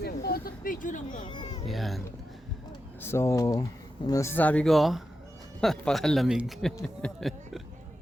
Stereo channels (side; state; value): both; normal; correlation 0.89